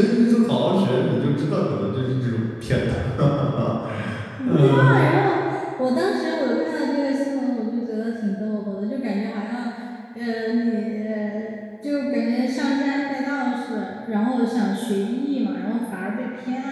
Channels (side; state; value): both; identical; correlation 1.00